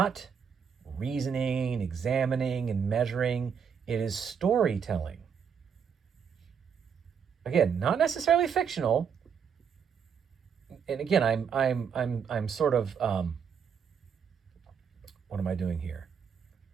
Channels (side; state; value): left; quieter; 7.1 dB